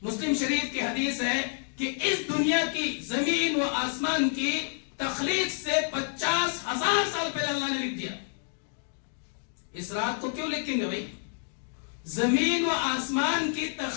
مسلم شریف کی حدیث ہے کہ اس دنیا کی، زمین و آسمان کی تخلیق سے 50,000 سال پہلے اللہ نے لکھ دیا۔ اس رات کو کیوں لکھیں گے بھائی؟ زمین و آسمان کی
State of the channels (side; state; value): right; silent; 59 dB below the other